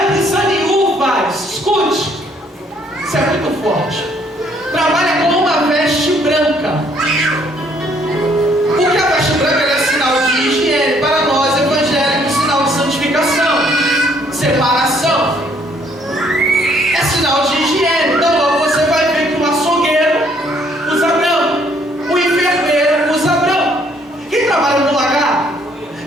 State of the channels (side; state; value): both; normal; correlation 0.65